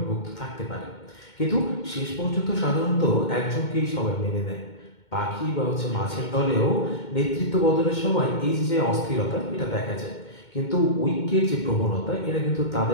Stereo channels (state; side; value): late; right; 2.2 ms